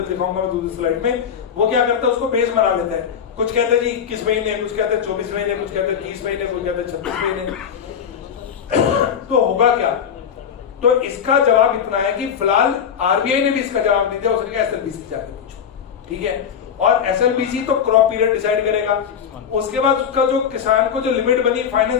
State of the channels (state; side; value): quieter; right; 7.8 dB